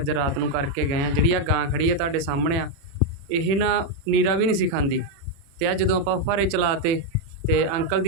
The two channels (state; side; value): late; left; 36 ms